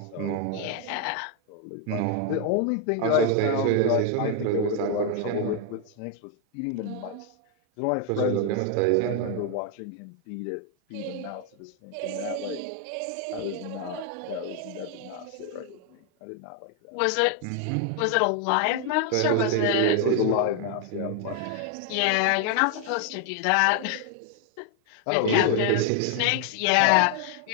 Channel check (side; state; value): both; different; correlation 0.00